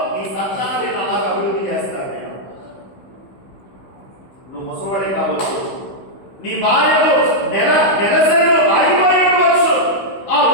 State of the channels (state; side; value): late; right; 15 ms